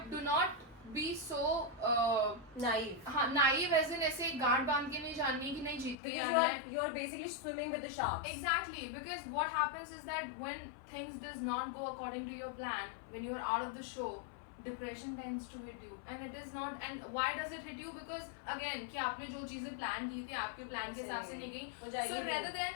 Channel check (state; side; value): drops out; right; at 6.0 s